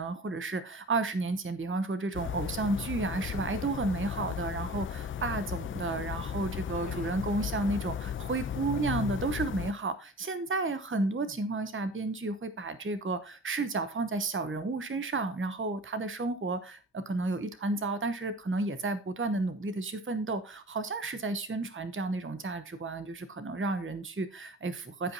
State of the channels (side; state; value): both; normal; correlation 0.41